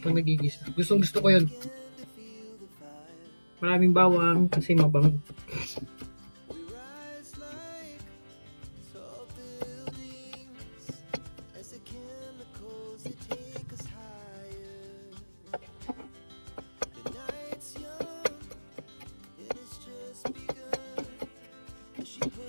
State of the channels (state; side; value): inverted; both; correlation -1.00